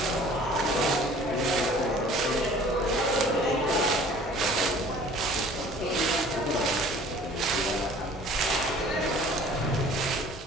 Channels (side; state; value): both; normal; correlation 0.49